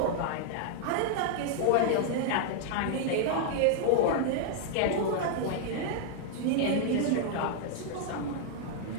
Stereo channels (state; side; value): different; both; correlation 0.00